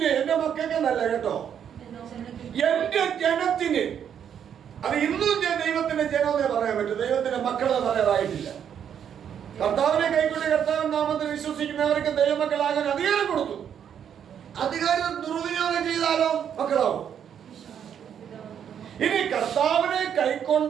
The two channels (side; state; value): left; quieter; 8.6 dB